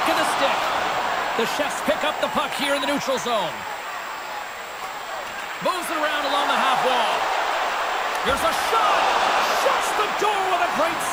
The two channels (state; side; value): identical; both; correlation 1.00